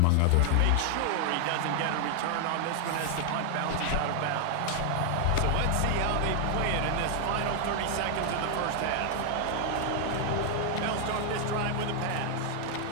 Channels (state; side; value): different; both; correlation 0.00